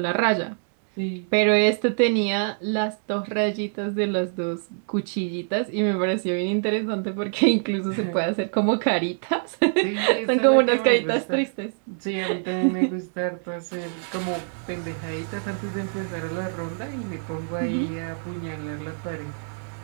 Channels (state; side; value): silent; left; digital silence